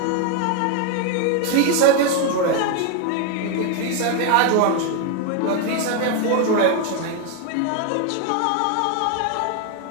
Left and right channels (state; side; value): different; both; correlation 0.01